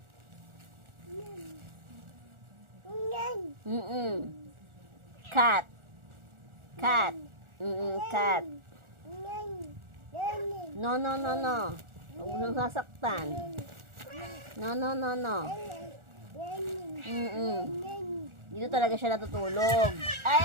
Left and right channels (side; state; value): left; late; 1.4 ms